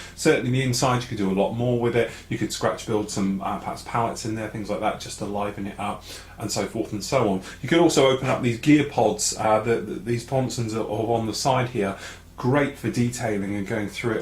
Certainly the inside, you could do a lot more with it. You could scratch build some perhaps pallets in there, things like that, just to liven it up, and so forth and so on. You could also open up these gear pods, these sponsons are on the side here, great for detailing and going through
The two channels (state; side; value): identical; both; correlation 1.00